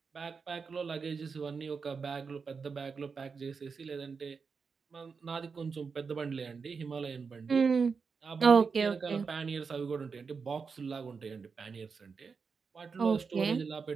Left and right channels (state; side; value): quieter; left; 5.3 dB